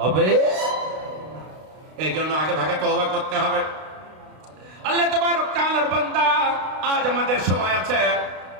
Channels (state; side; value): late; left; 32 ms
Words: এই জন্য আগে ভাগে তওবা করতে হবে। আল্লাহ তাবারক তাআলার বান্দা, আজ আমাদের সময় আছে,